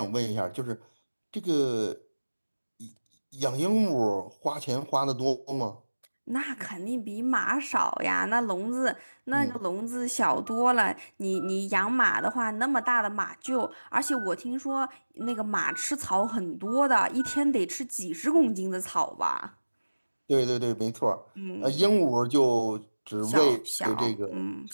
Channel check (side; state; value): both; inverted; correlation -1.00